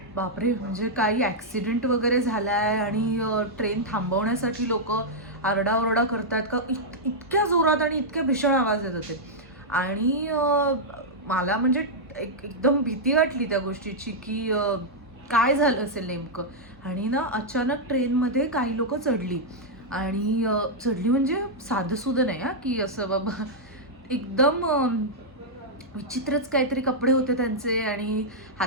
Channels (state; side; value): normal; both; correlation -0.06